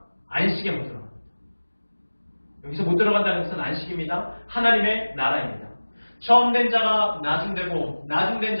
안식에 못 들어갑니다. 여기서 못 들어간다는 것은 안식입니다. 하나님의 나라입니다. 처음 된 자가 나중되고 나중된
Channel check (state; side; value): inverted; both; correlation -1.00